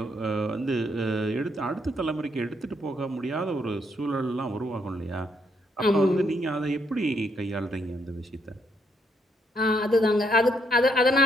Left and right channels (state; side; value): normal; both; correlation 0.74